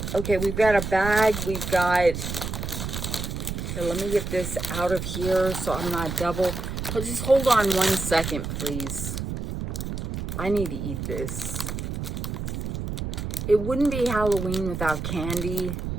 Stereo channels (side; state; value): right; noise; rumble, 5 dB below the sound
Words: Okay, we've got a bag. We've got... Here, let me get this out of here so I'm not double. Oh, just hold on 1 second, please. I need to eat this. It wouldn't be Halloween without candy.